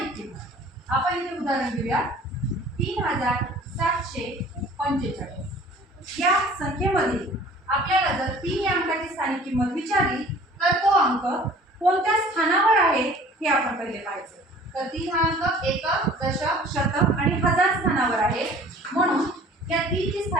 किंमत। आपण इथे उदाहरण घेऊया 3745। या संख्येमध्ये आपल्याला जर 3 या अंकाची स्थानिक किंमत विचारली तर तो अंक कोणत्या स्थानावर आहे हे आपण पहिले पाहायचं। तर 3 हा अंक एकक, दशक, शतक आणि हजार स्थानावर आहे, म्हणून या 3 ची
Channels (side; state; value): both; normal; correlation 0.49